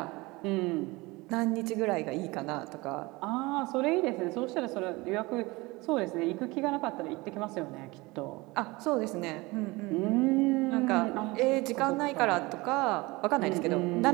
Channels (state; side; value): quieter; left; 22.9 dB